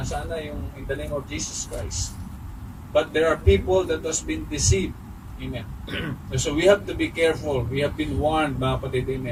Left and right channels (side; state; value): both; identical; correlation 1.00